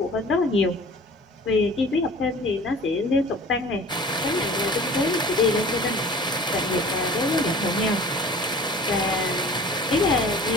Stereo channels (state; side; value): normal; both; correlation 0.44